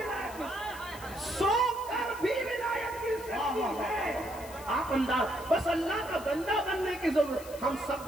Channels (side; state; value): left; noise; hiss, 17 dB below the sound